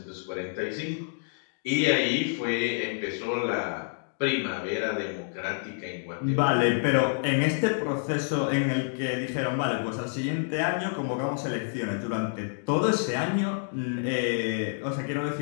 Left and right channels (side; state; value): right; silent; digital silence